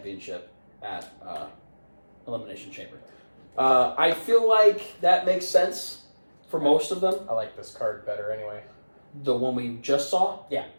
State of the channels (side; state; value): both; inverted; correlation -1.00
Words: at Elimination Chamber. I feel like that makes sense for most of them. I like this card better anyway. The one we just saw? Yeah.